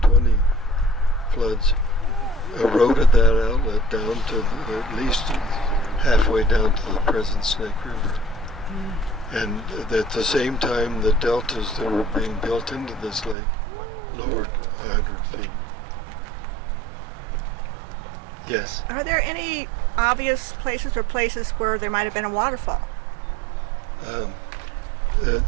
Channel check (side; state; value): left; drops out; at 13.4 s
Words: floods, eroded that outlet down to at least halfway down to the present Snake River. And at the same time, the deltas that were being built into this lake lowered 100 feet. Yes? Are there any obvious places where there might have been a waterfall?